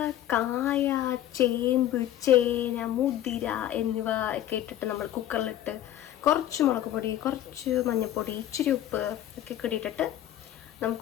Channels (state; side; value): quieter; right; 12.3 dB